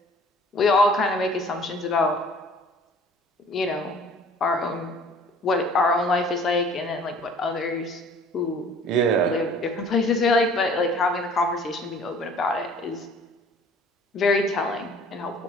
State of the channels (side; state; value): both; normal; correlation 0.51